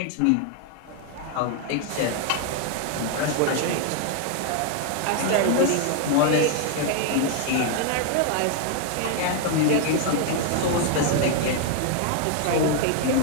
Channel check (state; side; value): different; both; correlation 0.00